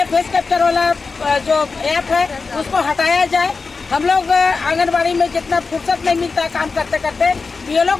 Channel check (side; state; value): right; quieter; 4.4 dB